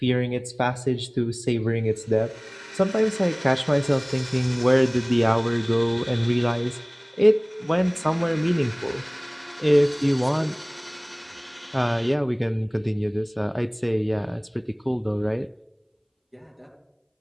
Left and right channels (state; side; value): identical; both; correlation 1.00